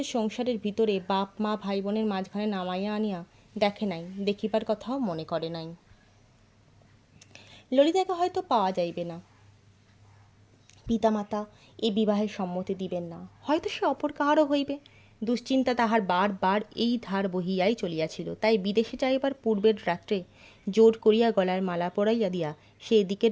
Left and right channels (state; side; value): identical; both; correlation 1.00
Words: সংসারের ভিতরে বাপ মা ভাই বোনের মাঝখানে নামাইয়া আনিয়া দেখে নাই, দেখিবার কথাও মনে করে নাই। ললিতাকে হয়তো পাওয়া যাইবে না, পিতামাতা এই বিবাহের সম্মতি দিবেন না, হয়তো সে অপর কাহারও হইবে, দুশ্চিন্তা তাহার বার এই ধার বহিয়াই চলিয়াছিল। তাই বিদেশে যাইবার পূর্বের রাত্রে জোর করিয়া গলার মালা পরাইয়া দিয়া সে